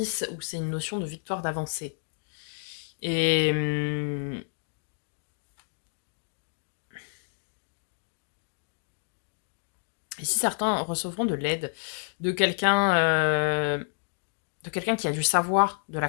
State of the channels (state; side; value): silent; right; digital silence